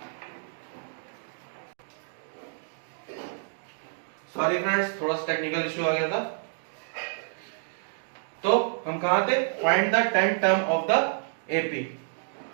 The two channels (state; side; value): silent; left; digital silence